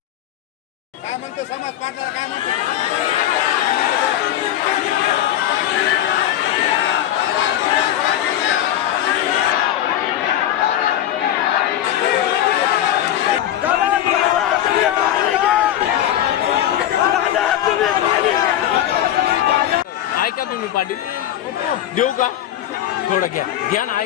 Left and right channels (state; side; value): quieter; right; 12.1 dB